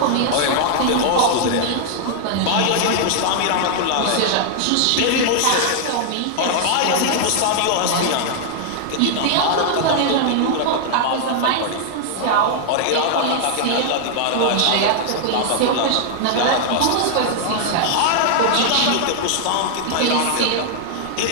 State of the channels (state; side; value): different; both; correlation -0.01